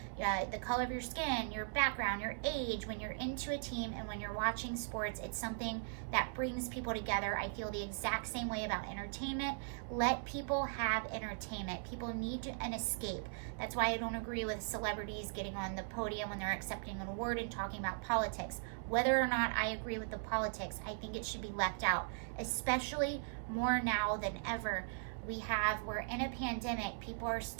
the color of your skin, your background, your age. When you're into a team and when you're watching sports, it's something that brings people together. I feel the exact same way about entertainment. Let people have entertainment. People need an escape. That's why I don't agree with celebrities getting on the podium when they're accepting an award and talking about politics. Whether or not I agree with the politics, I think it should be left out, especially more now than ever. We're in a pandemic, people are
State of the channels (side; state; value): left; silent; digital silence